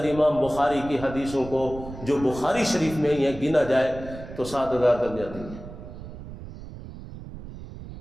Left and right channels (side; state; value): right; noise; rumble, 13 dB below the sound